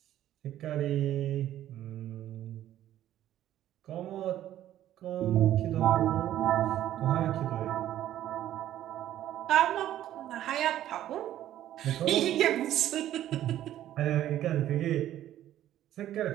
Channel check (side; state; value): left; quieter; 12.5 dB